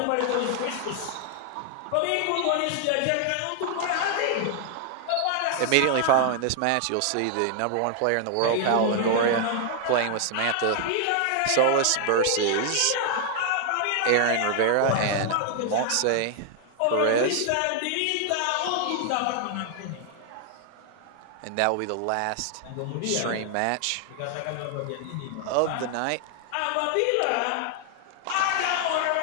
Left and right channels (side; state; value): both; different; correlation 0.00